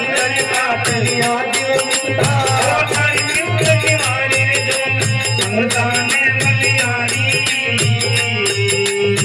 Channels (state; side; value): identical; both; correlation 1.00